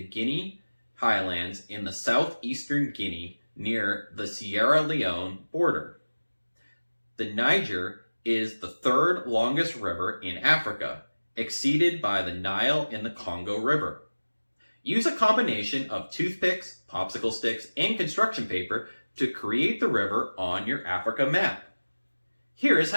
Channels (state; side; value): inverted; both; correlation -1.00